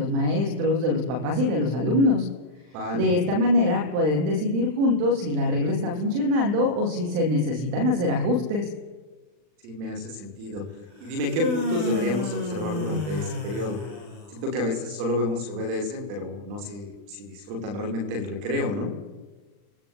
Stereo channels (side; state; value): left; late; 40 ms